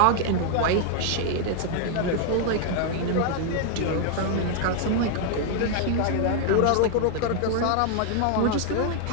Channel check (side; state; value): both; different; correlation 0.00